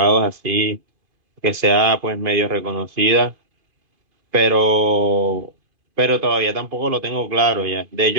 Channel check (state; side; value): late; left; 2.5 ms